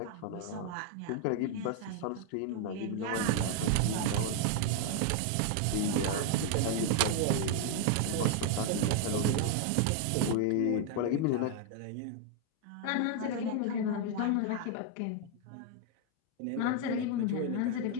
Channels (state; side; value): different; both; correlation 0.00